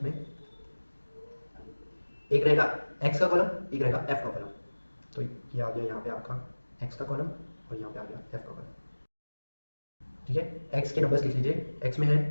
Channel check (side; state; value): both; inverted; correlation -1.00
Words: एक रहेगा एक्स का कॉलम, एक रहेगा एफ का कॉलम। तो ये आ गया यहाँ पे आपका एक्स का कॉलम और यहाँ पे आ गया एफ का कॉलम। ठीक है, एक्स के नंबर्स लिख लीजिए। एक्स में है